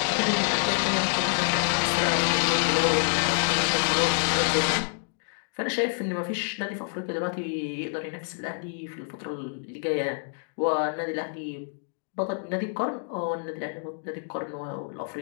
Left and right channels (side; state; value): right; silent; digital silence